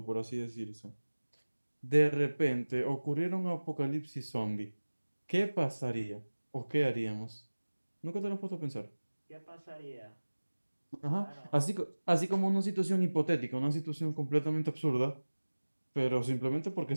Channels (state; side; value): inverted; both; correlation -1.00